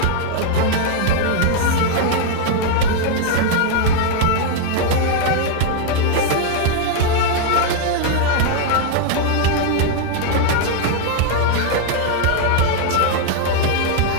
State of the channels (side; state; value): both; different; correlation 0.00